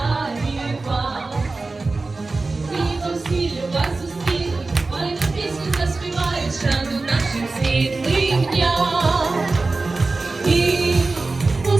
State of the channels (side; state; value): left; quieter; 3.6 dB